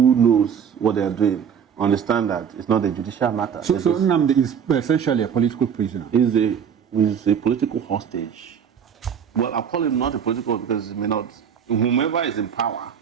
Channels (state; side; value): quieter; left; 7.7 dB